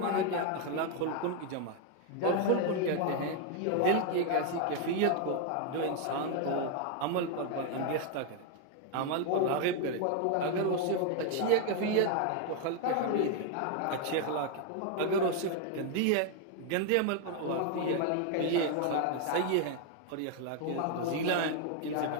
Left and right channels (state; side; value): different; both; correlation 0.01